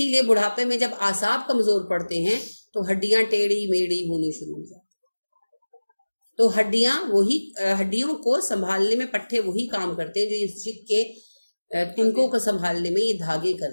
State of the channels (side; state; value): both; inverted; correlation -1.00